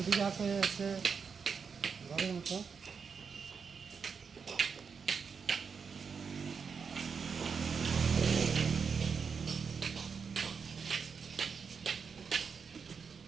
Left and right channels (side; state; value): left; quieter; 5.9 dB